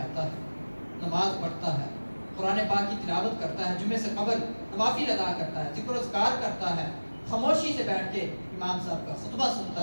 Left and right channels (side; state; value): both; inverted; correlation -1.00